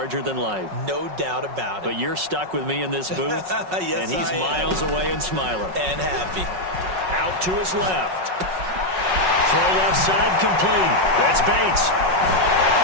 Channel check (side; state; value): left; late; 5.4 ms